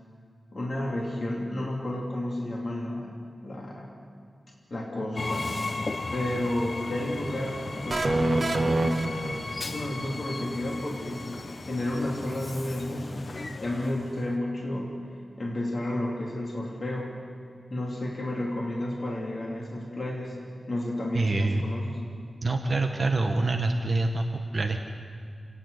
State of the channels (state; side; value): normal; both; correlation 0.93